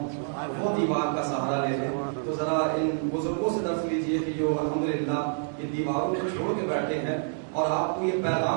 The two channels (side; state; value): left; silent; digital silence